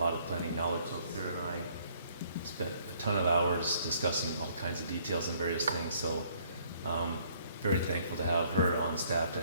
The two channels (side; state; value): both; inverted; correlation -0.64